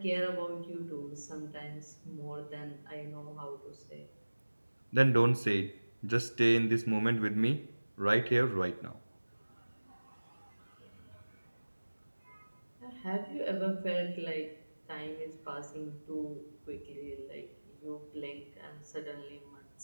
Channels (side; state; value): both; inverted; correlation -1.00